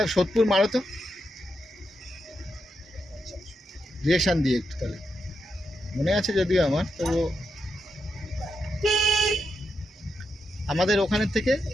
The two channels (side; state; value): both; normal; correlation 0.84